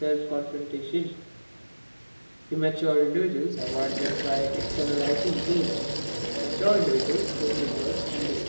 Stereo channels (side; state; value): both; inverted; correlation -1.00